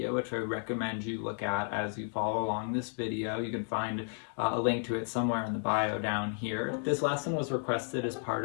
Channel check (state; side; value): silent; right; 56 dB below the other